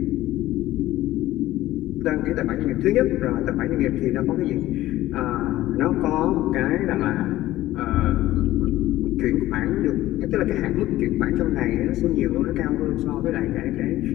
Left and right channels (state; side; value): quieter; right; 15.5 dB